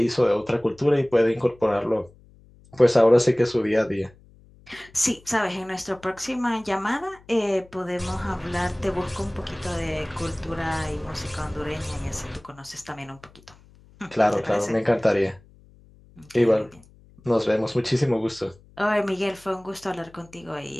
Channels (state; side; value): noise; left; hum, 26 dB below the sound